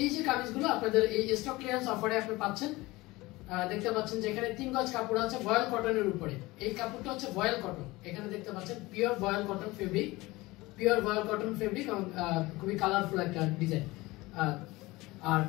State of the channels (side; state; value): right; quieter; 20.7 dB